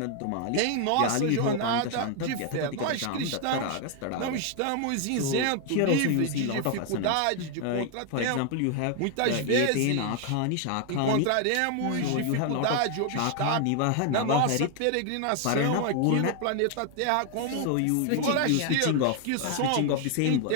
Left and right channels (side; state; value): both; different; correlation 0.00